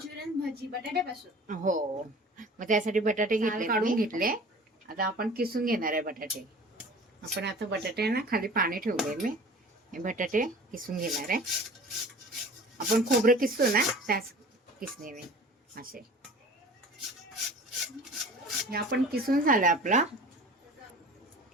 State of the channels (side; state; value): both; normal; correlation 0.42